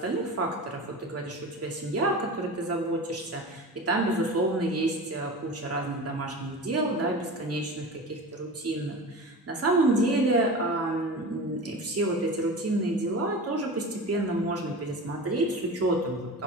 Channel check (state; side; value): normal; both; correlation 0.31